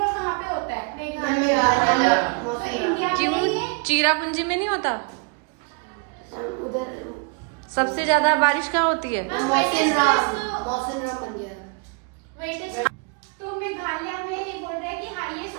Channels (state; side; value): quieter; left; 33.5 dB